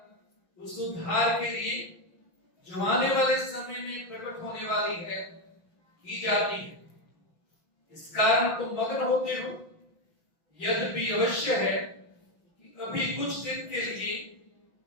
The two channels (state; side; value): late; right; 5.9 ms